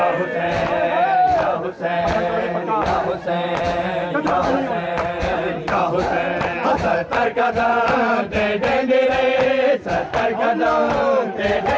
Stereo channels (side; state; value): both; identical; correlation 1.00